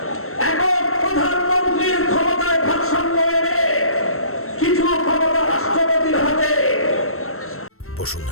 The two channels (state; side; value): late; right; 0.63 ms